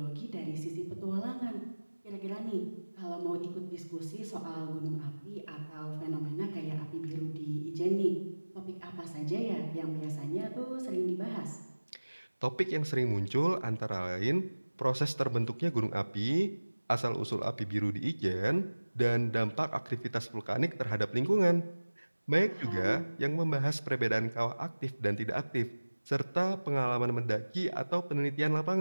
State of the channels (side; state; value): both; inverted; correlation -1.00